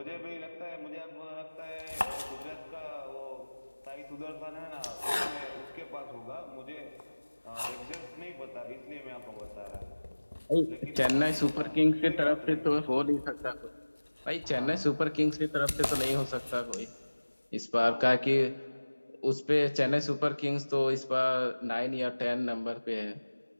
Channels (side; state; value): both; inverted; correlation -1.00